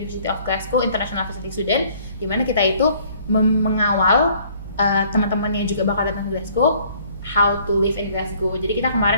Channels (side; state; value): both; inverted; correlation -0.59